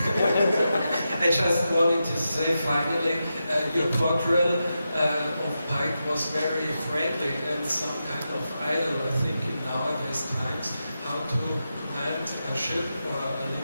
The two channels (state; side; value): inverted; both; correlation -0.89